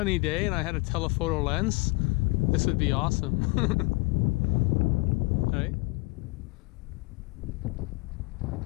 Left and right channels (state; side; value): quieter; right; 26.2 dB